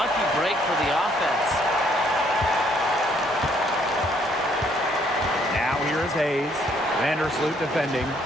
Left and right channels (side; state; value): both; normal; correlation 0.66